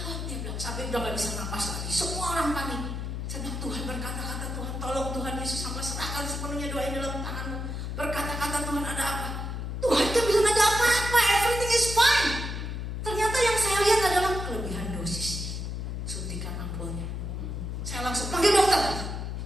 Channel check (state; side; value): noise; left; hum, 4 dB below the sound